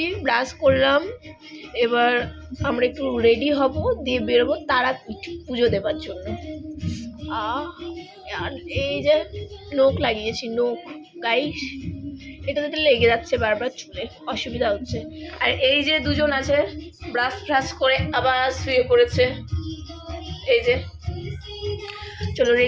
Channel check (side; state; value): both; identical; correlation 1.00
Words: ব্রাশ করলাম, এবার আমরা একটু রেডি হব, দিয়ে বেরোবো তারাপীঠ পুজো দেবার জন্য। আর এই যে নোখ লাগিয়েছি, নোখ গাইস, এটাতে লেগে যাচ্ছে বারবার, চুলে অসুবিধা হচ্ছে। আর এই যে দুজন আছে ব্রাশ ফ্রাশ করে আবার শুয়ে পড়েছে। এই যে, চলো